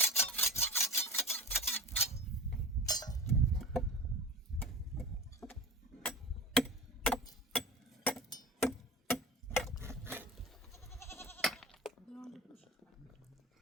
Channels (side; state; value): both; normal; correlation 0.33